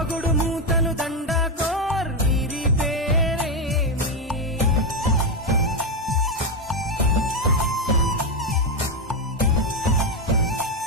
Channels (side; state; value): both; normal; correlation 0.08